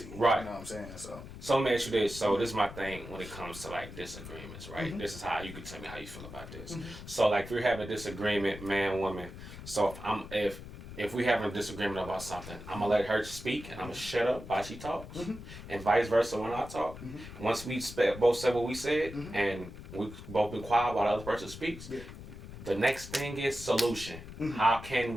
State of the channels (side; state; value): left; noise; rumble, 13 dB below the sound